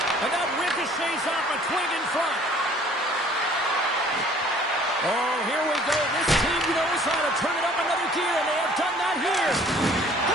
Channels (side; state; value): both; normal; correlation 0.54